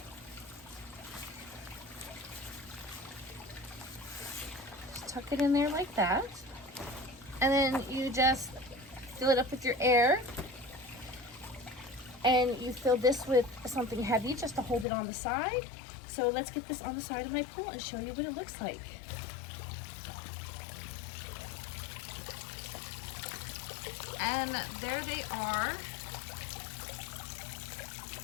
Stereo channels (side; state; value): right; drops out; at 14.9 s